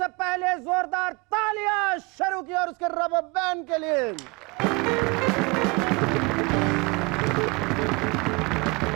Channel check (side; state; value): left; quieter; 28.1 dB